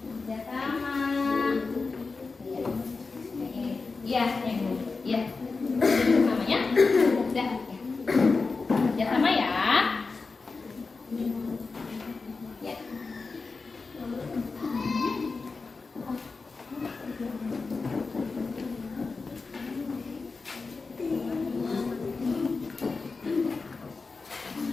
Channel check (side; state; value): right; quieter; 4.2 dB